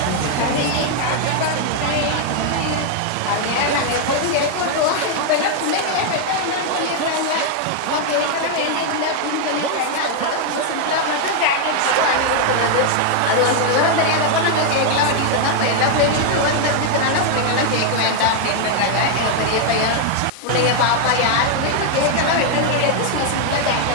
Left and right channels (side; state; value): both; different; correlation 0.00